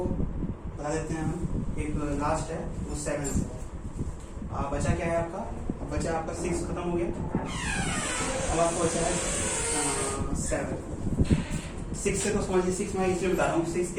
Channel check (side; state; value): both; identical; correlation 1.00